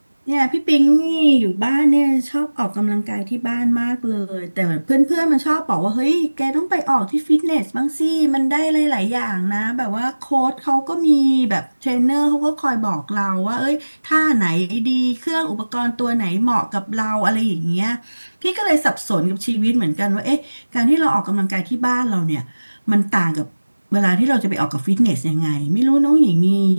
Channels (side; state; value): both; inverted; correlation -1.00